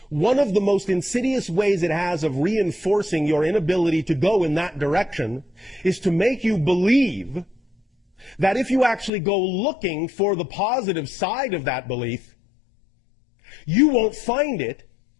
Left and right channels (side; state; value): right; drops out; at 9.1 s